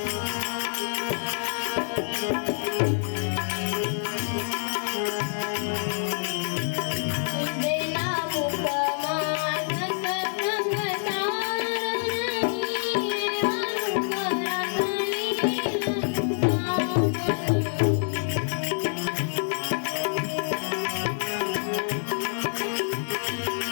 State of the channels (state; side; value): silent; right; digital silence